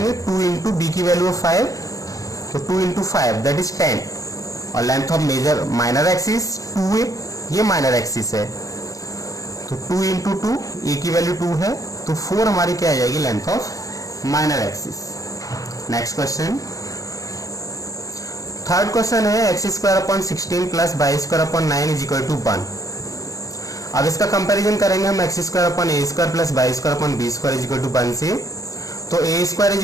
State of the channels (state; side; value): late; right; 0.16 ms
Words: 2 इंटू बी की वैल्यू 5, तो 2 इंटू 5 दैट इज 10, और length of major minor axis 2a, ये माइनर एक्सिस है, तो 2 इंटू 2, ए की वैल्यू 2 है, तो 4 हमारी क्या आ जाएगी length of minor axis. Next question, third question है X square upon 16 plus Y square upon 9 is equal to 1। अब इसका कंपैरिजन करेंगे हम X square upon A square plus Y square upon B square is equal to 1 से, तो A square is